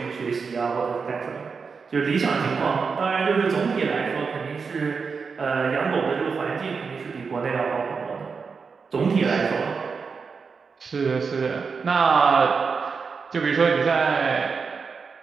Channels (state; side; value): quieter; left; 5.3 dB